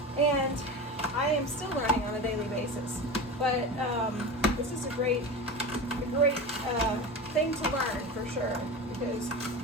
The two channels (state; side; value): normal; both; correlation 0.27